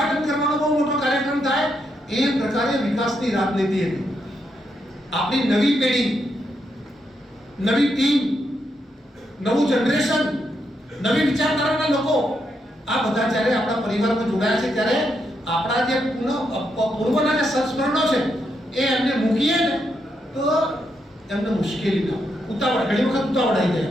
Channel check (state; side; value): normal; both; correlation 0.81